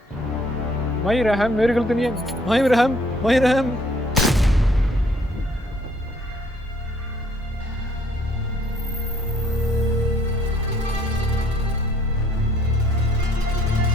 माही रहम, मेरी गलती नहीं है। माही रहम, माही रहम।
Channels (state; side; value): normal; both; correlation 0.63